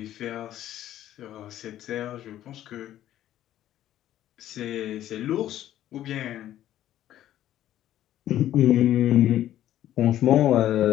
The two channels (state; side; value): quieter; right; 12.5 dB